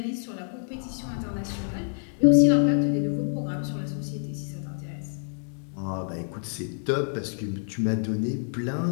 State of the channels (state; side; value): silent; right; digital silence